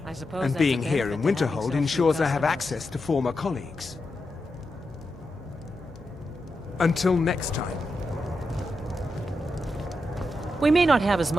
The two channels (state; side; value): normal; both; correlation 0.87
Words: I suppose and that's a being here in benefit to having Winterhold so few ensures I have customers. access to former colleagues. Until next time. We may not have as